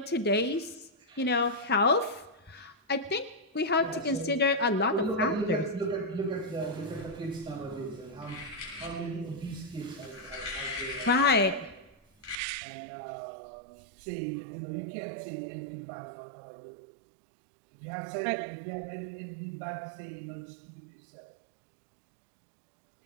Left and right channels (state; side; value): drops out; left; at 12.4 s